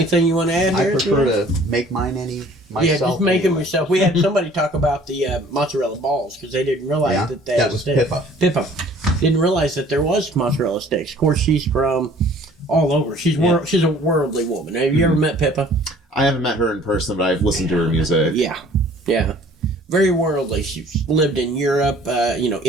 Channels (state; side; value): normal; both; correlation 0.53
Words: you want to add I here? prefer to make mine myself. Yeah, just make them anyway. yourself. We had somebody talk about the mozzarella balls because they didn't realize that they that was Pippa. Pippa didn't realize that there was mozzarella sticks. Of course, she's from all over. She's she's a worldly woman. Have you ever met Pippa? I haven't met her in person, but I've listened to her music. Yeah, yeah. Very worldly. She's lived in Europe,